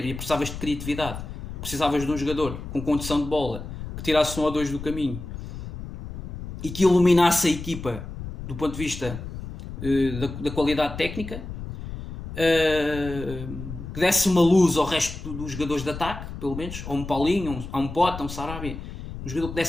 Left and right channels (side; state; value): left; noise; rumble, 9 dB below the sound